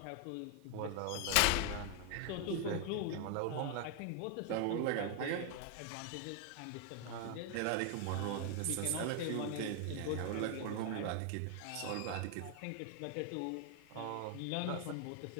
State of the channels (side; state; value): both; different; correlation 0.00